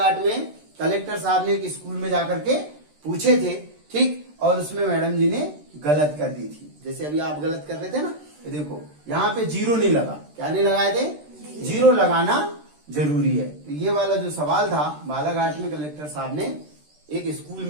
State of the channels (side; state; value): left; late; 13 ms